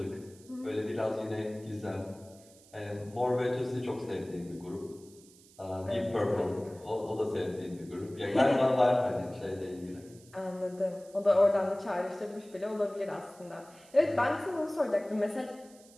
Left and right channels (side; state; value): right; noise; hiss, 25 dB below the sound